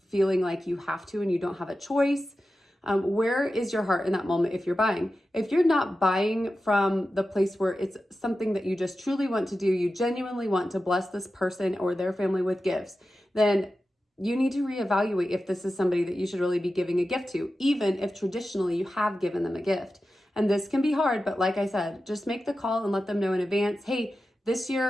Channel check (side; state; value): both; normal; correlation 0.93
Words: feeling like you have to and you don't have a choice? Where is your heart in that moment if you're buying? If you're not buying from the place where it's something that you just truly want to do, you genuinely want to bless this person or their family with gifts, then you need to reevaluate if this is somebody that you should really be giving a gift to, even if traditionally you have given them a gift. And this can be hard, but like I said, just make the call and let them know in advance, hey, this